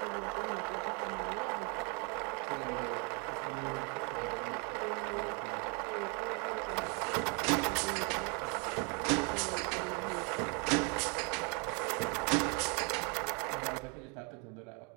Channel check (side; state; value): left; quieter; 34.6 dB